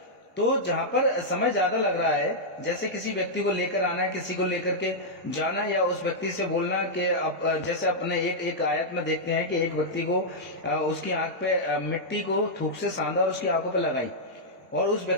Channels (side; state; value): both; normal; correlation -0.07